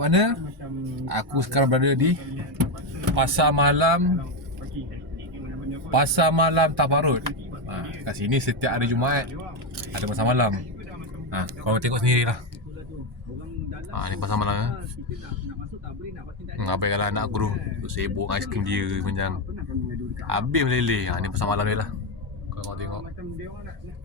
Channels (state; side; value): normal; both; correlation 0.09